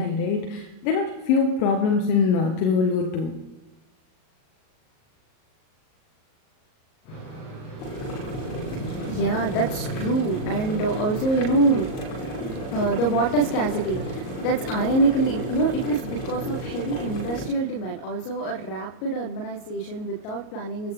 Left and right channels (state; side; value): late; right; 38 ms